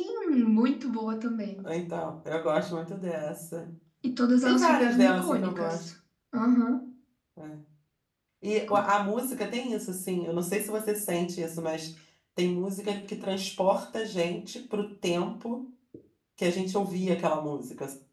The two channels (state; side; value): identical; both; correlation 1.00